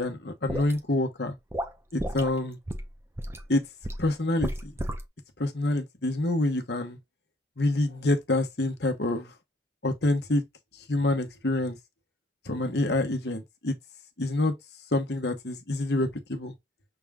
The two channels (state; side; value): normal; both; correlation 0.62